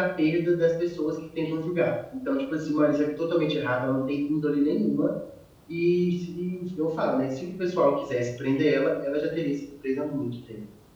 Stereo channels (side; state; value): both; identical; correlation 1.00